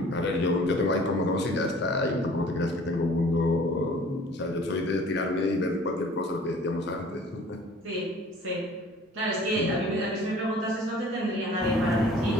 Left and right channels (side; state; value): both; normal; correlation 0.50